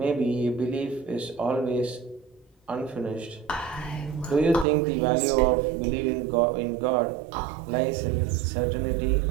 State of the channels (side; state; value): left; drops out; at 4.7 s